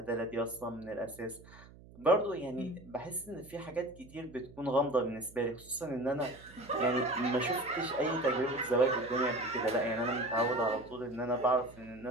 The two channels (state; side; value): noise; right; hum, 21 dB below the sound